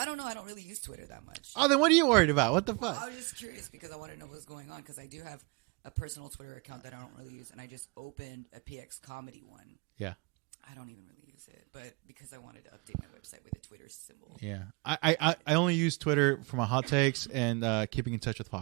don't know. I don't really use Twitter that much. Oh, then what are you worried about? What the fuck? I was just curious because I want to know what's going on because I do have a personal Twitter account that I don't really use, and I just opened a PX comedy one. Yeah. I don't even really use it, but because I wanted to update my website with a Twitter symbol. Yeah. I only use Twitter for my hot takes and keeping in touch with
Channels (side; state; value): left; quieter; 30.7 dB